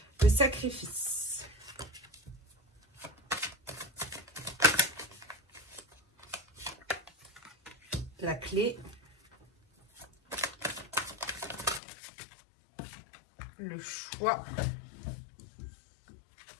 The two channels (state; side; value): drops out; right; at 11.8 s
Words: Le sacrifice. La clé. Le choix.